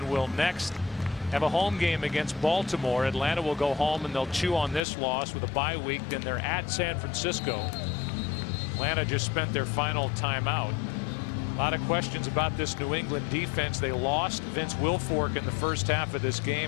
will next have a home game against Baltimore. Atlanta will go home and they'll chew on this loss with a bye week. Then they're at San Francisco. Atlanta just spent their final timeout. A lot of questions about this New England defense. They lost Vince Wilfork in the first half of this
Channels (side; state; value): right; drops out; at 4.8 s